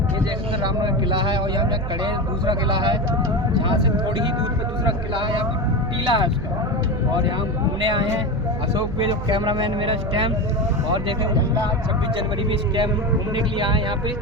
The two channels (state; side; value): noise; right; hum, 7 dB below the sound